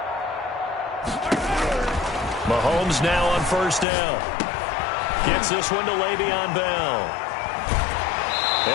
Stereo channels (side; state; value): right; drops out; at 3.9 s